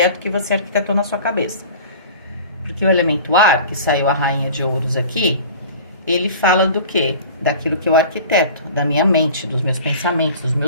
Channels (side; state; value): both; inverted; correlation -0.40